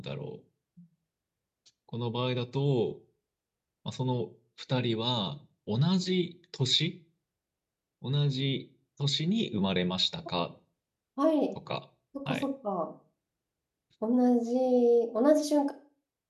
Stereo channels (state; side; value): identical; both; correlation 1.00